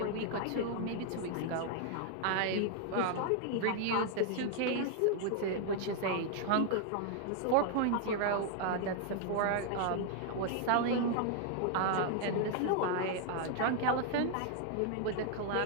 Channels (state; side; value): different; both; correlation 0.00